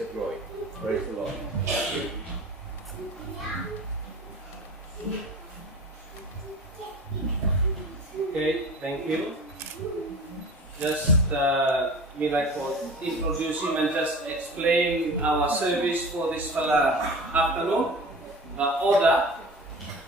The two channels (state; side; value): normal; both; correlation 0.37